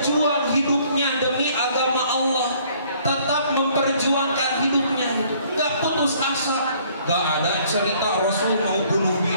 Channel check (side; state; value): both; inverted; correlation -0.60